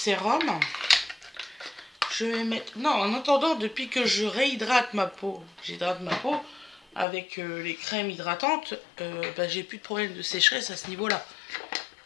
Je vais mettre... Non, en attendant, depuis que je réhydrate ma peau, j'hydrate ma peau avec les crèmes hydratantes, bah, j'ai plus de problème de sécheresse à ce niveau-là.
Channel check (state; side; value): drops out; right; at 7.1 s